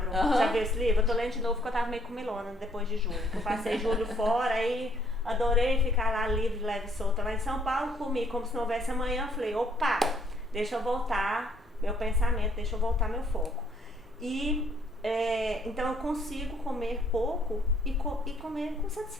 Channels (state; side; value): normal; both; correlation 0.65